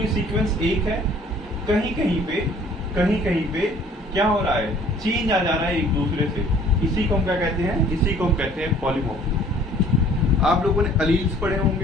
सीक्वेंस एक है, कहीं कहीं पे क्या हो रहा है? चेंज आ जा रहा है एक दूसरे से। इसी को हम क्या कहते हैं? इसी को हम कहते हैं पॉलीमॉर्फिज्म। आप लोगों ने अलील्स पढ़े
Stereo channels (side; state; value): both; normal; correlation 0.54